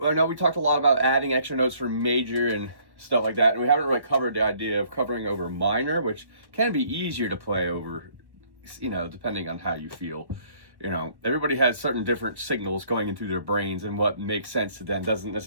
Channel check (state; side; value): late; left; 1.1 ms